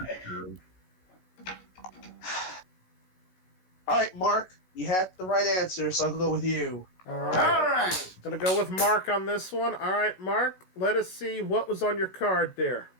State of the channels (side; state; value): right; late; 16 ms